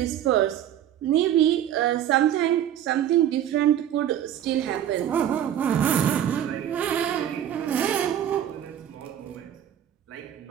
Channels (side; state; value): left; quieter; 10.7 dB